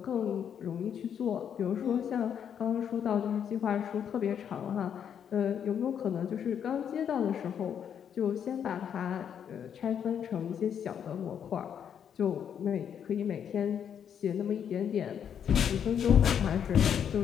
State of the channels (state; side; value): quieter; right; 8.4 dB